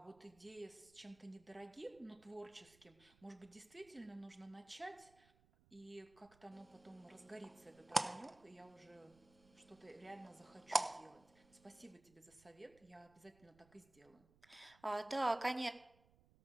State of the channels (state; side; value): noise; right; rumble, 27 dB below the sound